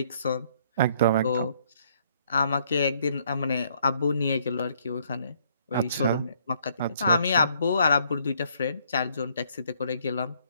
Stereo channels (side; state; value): both; inverted; correlation -0.66